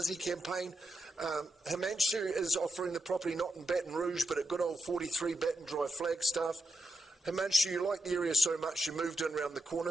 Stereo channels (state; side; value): normal; both; correlation 0.86